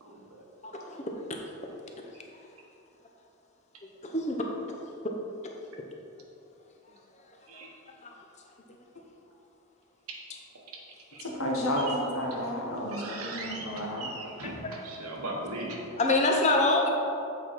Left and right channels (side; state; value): both; normal; correlation 0.01